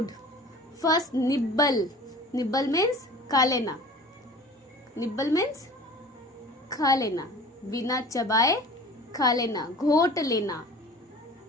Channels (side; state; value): both; normal; correlation 0.42